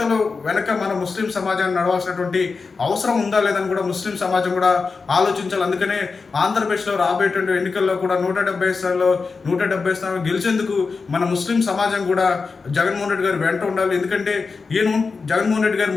వెనక మన ముస్లిం సమాజాన్ని నడవాల్సినటువంటి అవసరం ఉందా లేదని కూడా ముస్లిం సమాజం కూడా ఆలోచించాలి. అందుకనే ఆంధ్రప్రదేశ్లో రాబోయేటువంటి ఎన్నికల్లో కూడా 170 స్థానాలు గెలిచేందుకు మన ముస్లిం సమాజం కూడా జగన్మోహన్ రెడ్డి గారు వెంట ఉండాలి. ఎందుకంటే జగన్మోహన్ రెడ్డి గారు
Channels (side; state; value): right; quieter; 4.6 dB